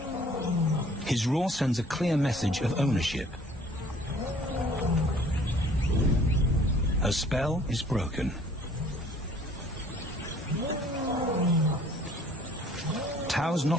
His roar sends a clear message of ownership. Her spell is broken. Tao's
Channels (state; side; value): normal; both; correlation 0.55